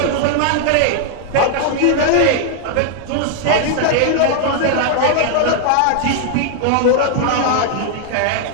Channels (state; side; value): different; both; correlation 0.00